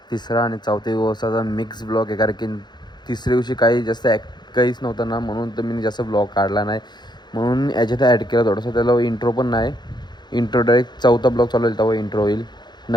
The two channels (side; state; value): right; late; 0.21 ms